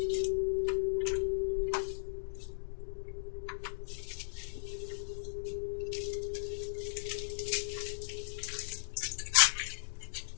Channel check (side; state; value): right; silent; digital silence